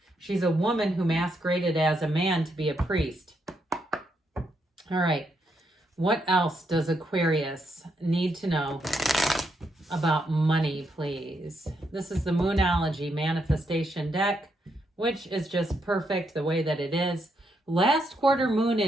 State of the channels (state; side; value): normal; both; correlation 0.79